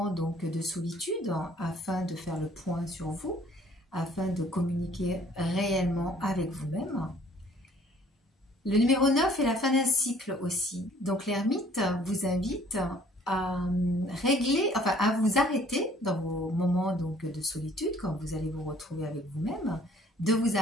donc de solitude afin de faire le point sur vous, afin de communiquer réellement avec vous-même. Le numéro 9 est la fin d'un cycle aussi. Donc l'ermite vous invite à régler, enfin à vous arrêter dans vos moments donc de solitude, quand vous allez vous retrouver avec vous-même, de vous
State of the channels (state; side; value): normal; both; correlation 0.57